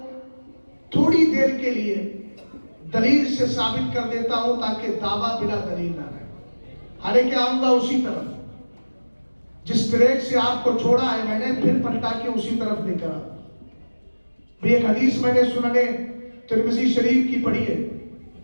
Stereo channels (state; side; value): inverted; both; correlation -1.00